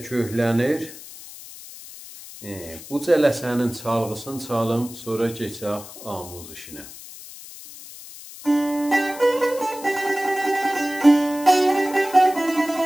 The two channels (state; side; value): noise; left; hiss, 15 dB below the sound